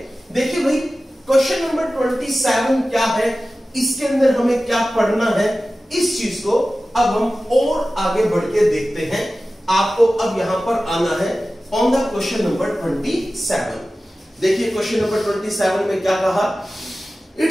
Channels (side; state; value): both; normal; correlation 0.96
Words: देखिए भाई, क्वेश्चन नंबर 27 क्या है, इसके अंदर हमें क्या पढ़ना है, इस चीज को अब हम और आगे बढ़ के देखते हैं। आपको अब यहां पर आना है ऑन द क्वेश्चन नंबर 27। देखिए क्वेश्चन नंबर 27 में क्या कहा, it